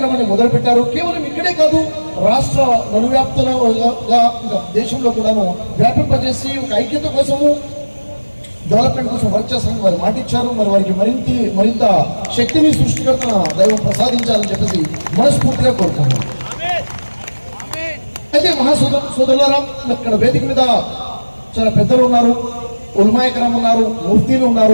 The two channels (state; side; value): inverted; both; correlation -1.00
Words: మొదలుపెట్టారు. కేవలం ఇక్కడే కాదు, రాష్ట్ర నలువ్యాప్తంగా దేశంలో కూడాను వ్యాపింపజేసి ఒక ఐక్యత కోసము డెవలప్మెంట్ కోసం వర్క్ చేస్తారని వారు మాటిచ్చారు. మరి వారికి మరింత శక్తిని సృష్టికర్తన దైవం ప్రసాదించాలని చెప్పేసి మనస్ఫూర్తిగా కోరుకున్నాం. అయితే సోదరులారా, ఇక్కడ వేదిక మీద చాలా పెద్దలు ఉన్నారు, ఉల్మాయకరం ఉన్నారు, ముఫ్తీలు